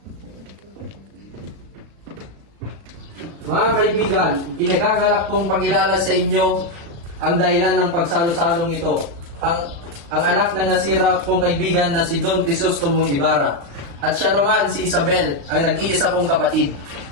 Mga kaibigan, kinagagalak kong pagkilala sa inyo ang dahilan ng pagsalo-salong ito. Ang anak ng nasira kong kaibigan na si Don Crisostomo Ibarra. At siya naman si Isabel, ang nag-iisa kong kapatid.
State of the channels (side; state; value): left; late; 36 ms